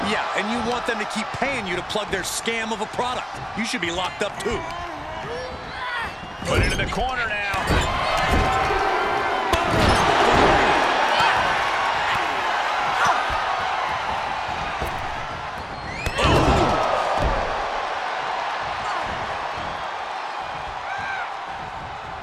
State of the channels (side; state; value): both; identical; correlation 1.00